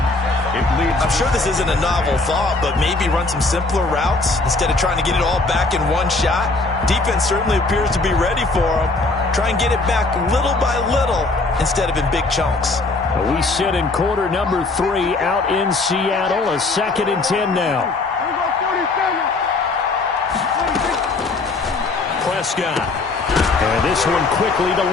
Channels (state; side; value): quieter; right; 3.4 dB